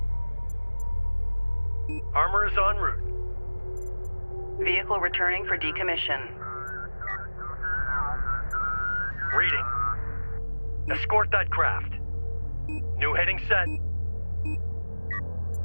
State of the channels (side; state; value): both; inverted; correlation -1.00